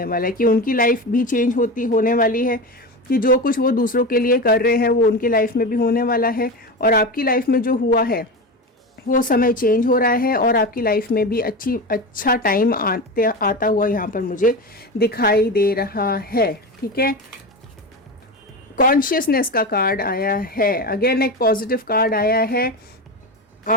वाला है कि उनकी लाइफ भी चेंज होने वाली है, कि जो कुछ वो दूसरों के लिए कर रहे हैं वो उनकी लाइफ में भी होने वाला है। और आपकी लाइफ में जो हुआ है वो समय चेंज हो रहा है, और आपकी लाइफ में भी अच्छा टाइम आता हुआ यहाँ पर मुझे दिखाई दे रहा है, ठीक है। कॉन्शियसनेस का कार्ड आया है, अगेन एक पॉजिटिव कार्ड आया है।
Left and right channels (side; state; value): both; normal; correlation 0.23